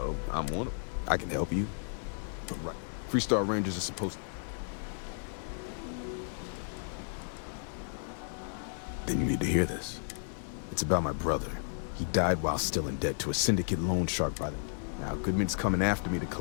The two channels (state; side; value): silent; right; digital silence